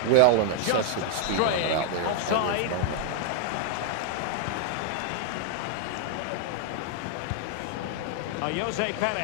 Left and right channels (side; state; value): both; different; correlation 0.00